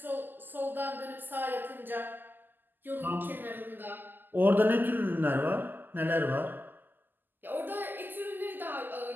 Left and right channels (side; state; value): left; late; 0.090 ms